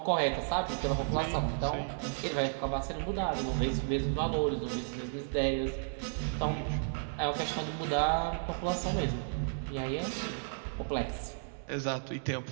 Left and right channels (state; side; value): silent; left; digital silence